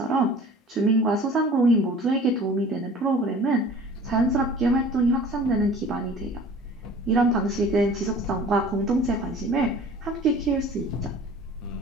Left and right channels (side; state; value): both; normal; correlation 0.45